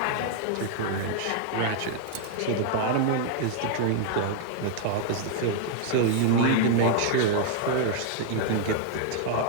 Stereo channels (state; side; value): different; both; correlation 0.00